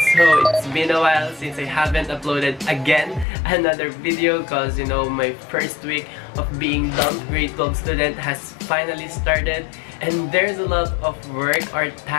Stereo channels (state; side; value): drops out; right; at 3.2 s